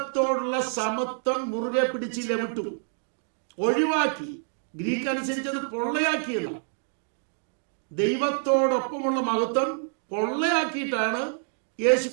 സമത്വം മുറുകെ പിടിച്ചില്ല, വിട്ടു, ഒഴിവാക്കി. ഗ്രീക്ക് അനുസരിച്ചത് പൊള്ളയാക്കിയല്ല. ദൈവത്തോടൊപ്പമുള്ള മഹത്വം പൊള്ളയാക്കിയിട്ടാണ് യേശു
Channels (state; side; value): silent; left; digital silence